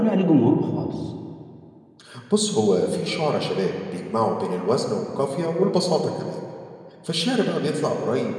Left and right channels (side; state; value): both; identical; correlation 1.00